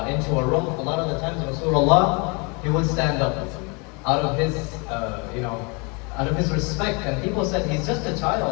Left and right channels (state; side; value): quieter; right; 31.2 dB